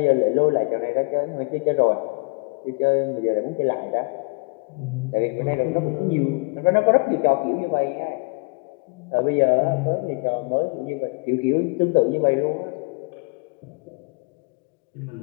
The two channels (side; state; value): right; quieter; 31.7 dB